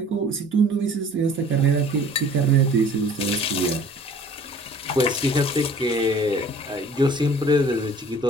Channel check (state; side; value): normal; both; correlation 0.50